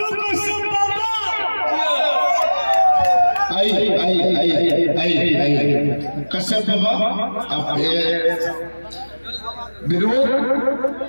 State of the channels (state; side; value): inverted; both; correlation -1.00